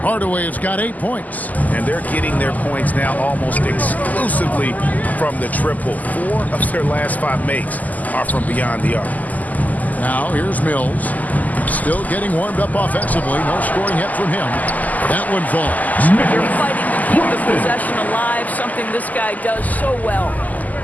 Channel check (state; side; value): late; right; 0.080 ms